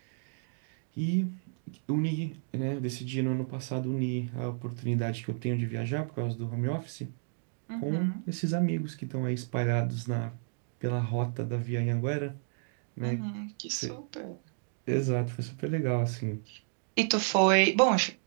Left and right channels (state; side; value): silent; left; digital silence